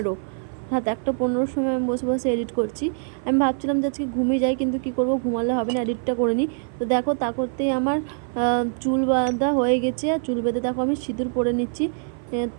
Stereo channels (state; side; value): silent; left; 56 dB below the other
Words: রাত 1:15 সময় আমি বসে বসে এডিট করছি। আমি ভাবছিলাম যে আজকে ঘুমিয়ে যাই, কিন্তু কী করবো, ঘুমালে হবে না, এডিটটা করে নিই। তো দেখো তা করতেই আমার চুল বাঁধা হয়ে গেছে। আর চুল বেঁধে দেখো আমি সিঁদুর পরে নিচ্ছি।